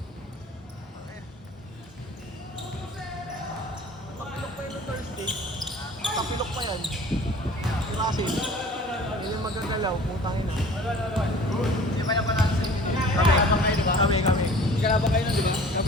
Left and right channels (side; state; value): both; normal; correlation 0.46